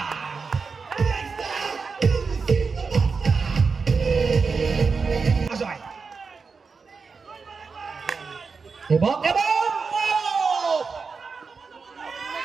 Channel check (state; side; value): quieter; left; 4.9 dB